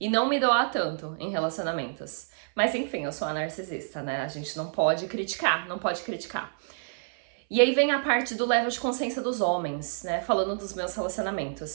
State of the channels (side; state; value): left; silent; 56 dB below the other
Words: não me doar tanto em relacionamentos. Mas enfim, eu sou a narcisista, né? A gente não pode criticar. E aí vem a parte do level de consciência dos homens, né? Falando dos meus